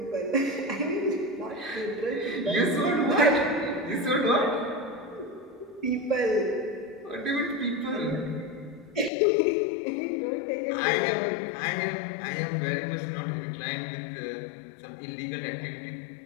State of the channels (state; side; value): drops out; right; at 9.1 s